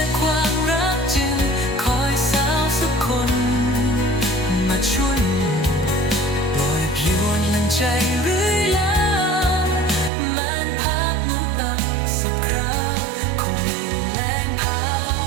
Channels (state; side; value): drops out; left; at 10.1 s